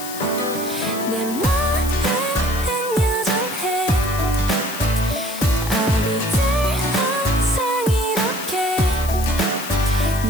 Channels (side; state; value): left; noise; hiss, 10 dB below the sound